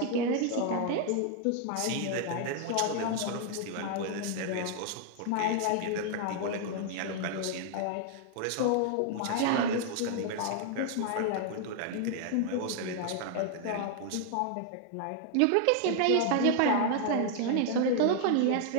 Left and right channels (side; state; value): both; different; correlation 0.00